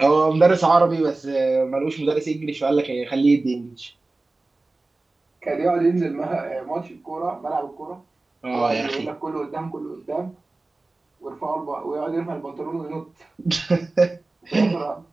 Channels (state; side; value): quieter; left; 3.2 dB